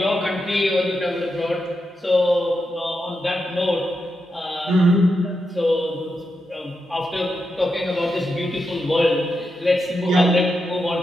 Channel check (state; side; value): normal; both; correlation 0.86